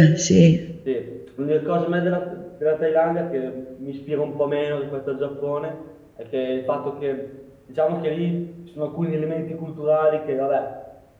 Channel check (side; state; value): both; identical; correlation 1.00